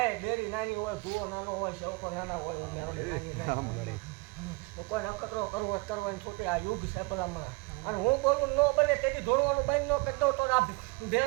ડેરી નાની હોય ભૂવો નાનો હોય શેવકો નાના હોય કોઈ નખતરો કરવો છોટે આ યુગ છે ભલામણા અને હું બોલું ન બને તેથી ધોળવાનું બંધ ન કરતો તો આ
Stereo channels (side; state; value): left; quieter; 26.3 dB